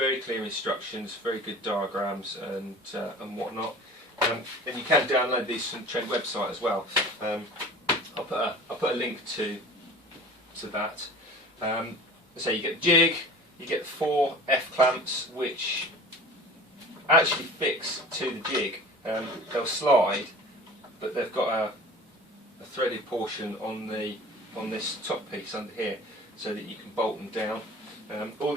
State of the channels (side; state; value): both; normal; correlation 0.41